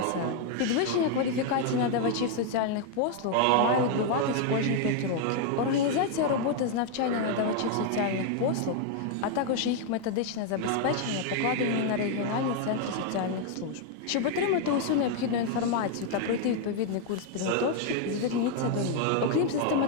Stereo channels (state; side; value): different; both; correlation 0.00